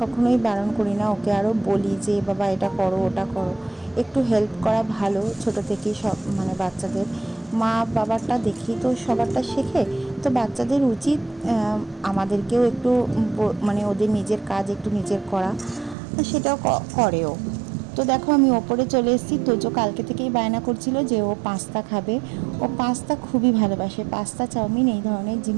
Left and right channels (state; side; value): drops out; left; at 16.0 s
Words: কখনোই বারণ করি না, ওকে আরও বলি যে বাবা এটা করো ওটা করো। একটু হেল্প করা ভালো, ছোট থেকেই সব মানে বাচ্চাদের মা বাবারটা দেখেই তো সবারটা শেখে। তো বাচ্চাদের উচিত আমাদেরকেও একটু মানে ওদের নিজের কাজ একটু নিজের করা, সেটাও করেও। তো দেখো আমি ওপরে চলে এসেছি। তোজো কালকে থেকেই বায়না করছিল যে ও পাস্তা খাবে। ও পাস্তা খুবই ভালোবাসে, পাস্তা চাউমিন এই ধরনের